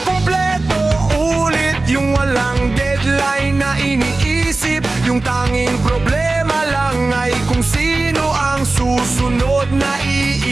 ulit yung walang deadline na iniisip. Yung tanging problema lang ay kung sino ang susunod na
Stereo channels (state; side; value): quieter; left; 3.3 dB